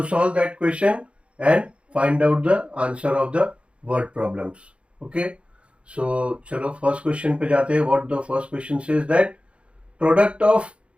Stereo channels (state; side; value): late; left; 0.060 ms